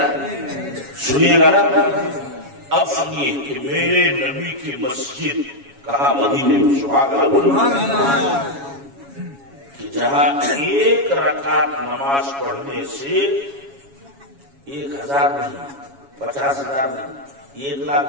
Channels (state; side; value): late; left; 7.2 ms